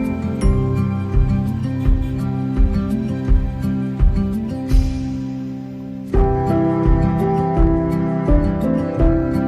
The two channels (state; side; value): identical; both; correlation 1.00